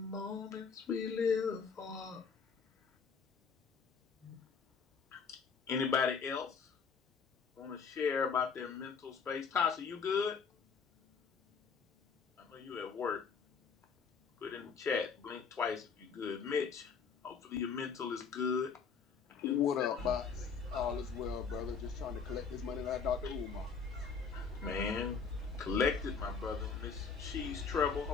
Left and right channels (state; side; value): quieter; right; 5.8 dB